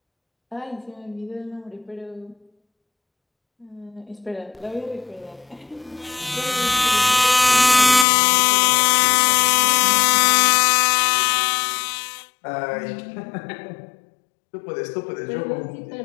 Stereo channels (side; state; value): right; drops out; at 8.1 s